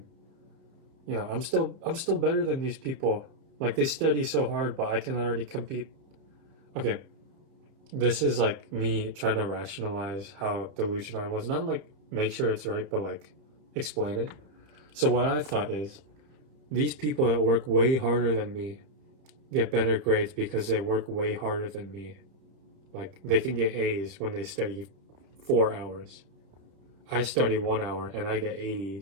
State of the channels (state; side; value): late; left; 31 ms